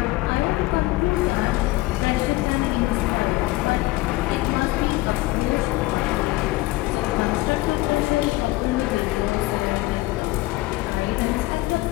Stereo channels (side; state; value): right; quieter; 19.5 dB